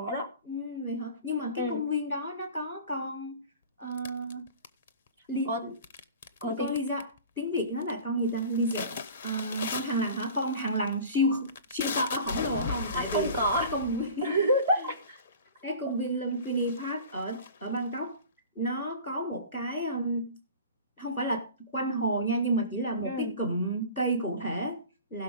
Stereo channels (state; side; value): inverted; both; correlation -0.39